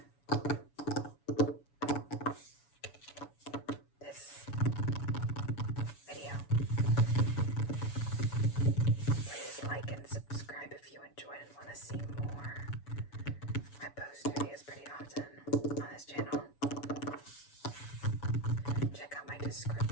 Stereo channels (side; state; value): right; late; 7.0 ms